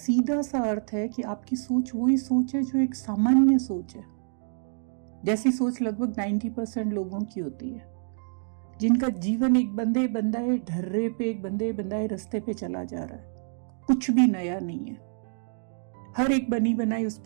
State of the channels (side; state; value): left; silent; digital silence